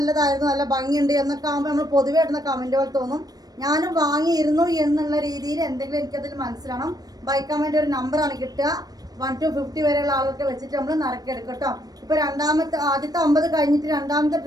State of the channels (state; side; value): late; left; 0.19 ms